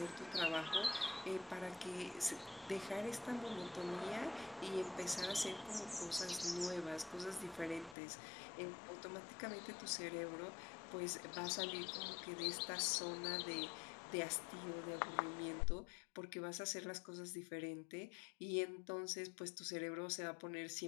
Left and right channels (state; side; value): drops out; right; at 8.0 s